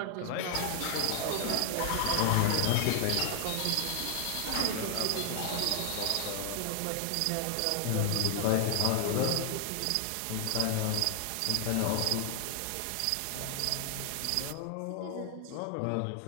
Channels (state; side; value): different; both; correlation 0.00